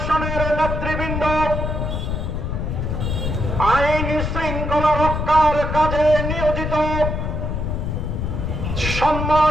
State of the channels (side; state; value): left; noise; rumble, 2 dB below the sound